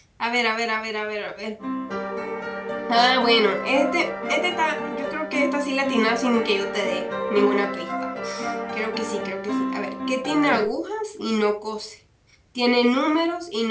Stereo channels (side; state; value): both; identical; correlation 1.00